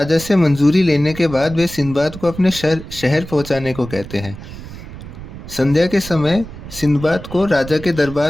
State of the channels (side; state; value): right; noise; rumble, 13 dB below the sound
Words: से मंजूरी लेने के बाद वे सिंदबाद को अपने शहर पहुँचाने को कहते हैं। संध्या के समय सिंदबाद को राजा के